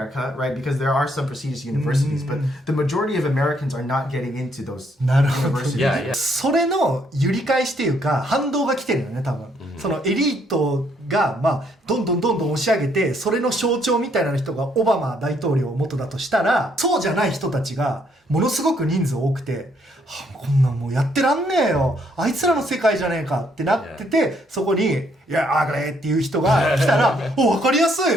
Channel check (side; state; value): both; normal; correlation 0.70